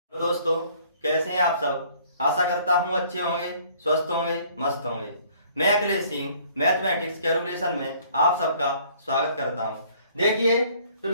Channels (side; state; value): both; inverted; correlation -0.58